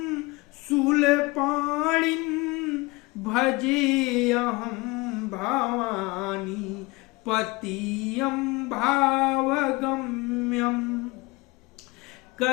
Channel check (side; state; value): right; quieter; 23.8 dB